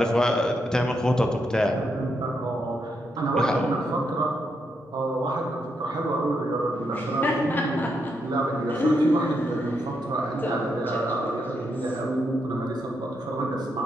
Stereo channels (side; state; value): both; normal; correlation 0.80